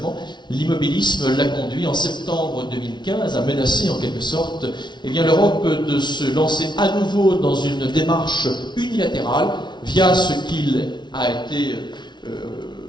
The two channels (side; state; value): right; late; 0.21 ms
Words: l'immobilisme l'a conduit en septembre 2015 à menacer en quelque sorte l'Europe de se lancer à nouveau dans une démarche unilatérale via ce qu'il a été